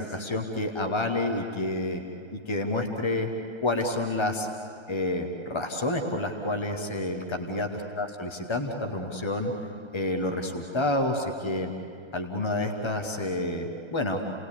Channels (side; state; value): right; late; 1.3 ms